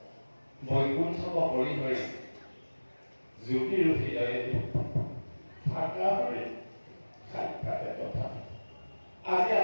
বৈকুণ্ঠক পৰিহৰি জ্যোতিৰ হৃদয়ে থাকা হৰি সাক্ষাতে তথা। আজি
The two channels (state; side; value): inverted; both; correlation -1.00